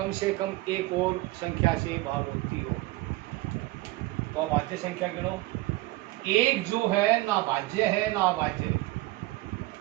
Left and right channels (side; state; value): left; quieter; 19.4 dB